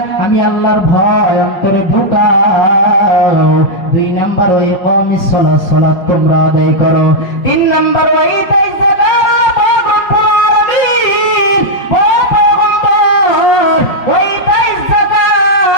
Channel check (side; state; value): right; late; 5.1 ms